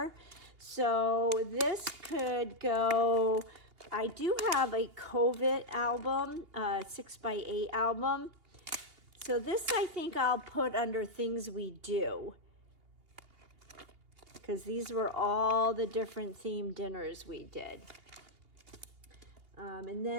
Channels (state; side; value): late; left; 2.8 ms